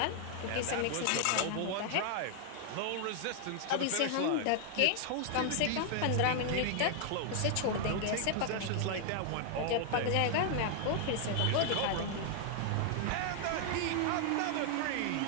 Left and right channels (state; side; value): different; both; correlation 0.00